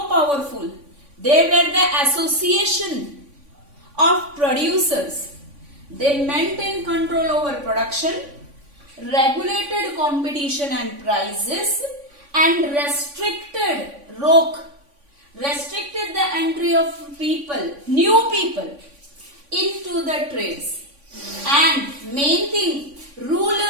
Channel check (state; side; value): late; left; 3.5 ms